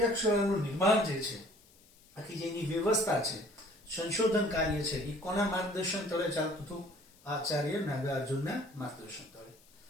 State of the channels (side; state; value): left; noise; hiss, 28 dB below the sound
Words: નિર્માણ જે છે, આખી જેની વ્યવસ્થા છે, સંશોધન કાર્ય છે, એ કોના માર્ગદર્શન તળે ચાલતું હતું? આચાર્ય નાગાર્જુનના માર્ગદર્શન તળે.